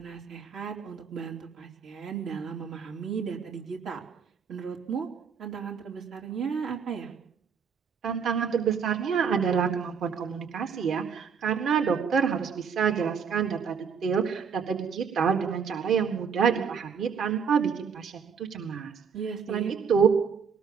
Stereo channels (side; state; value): left; quieter; 6.5 dB